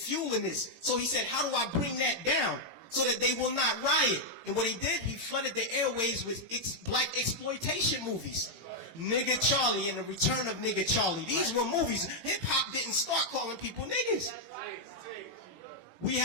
this. So he said, how do I bring that down so that they will not riot? And what he did, he flooded the airways with black exploitation movies. Nigga Charlie and the Return of Nigga Charlie. These were movies. Hip-hop didn't start calling people niggas. We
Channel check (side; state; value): left; late; 18 ms